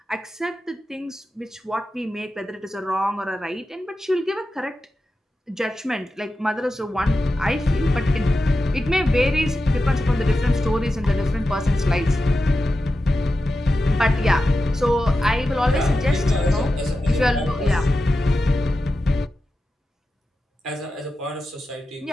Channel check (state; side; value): normal; both; correlation 0.91